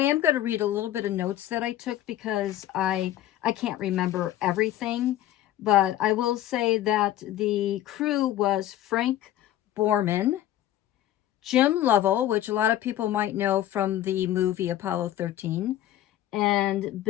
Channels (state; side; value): quieter; right; 13.0 dB